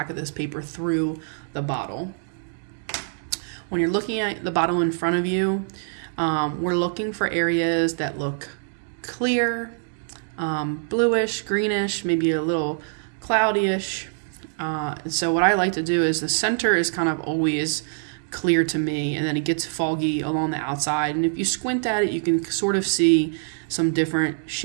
of this paper through the bottle. When you're looking at the bottle in front of you, we're looking for areas that look clear bluish, greenish, maybe a little cloudyish. And so what I like to do is the center is kind of always clear to me, and then it gets foggy along the outside. And if you squint at it, you can sort of see some different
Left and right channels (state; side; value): silent; left; digital silence